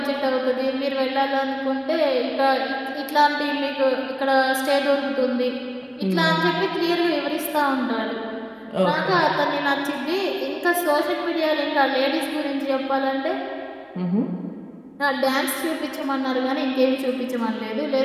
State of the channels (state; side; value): identical; both; correlation 1.00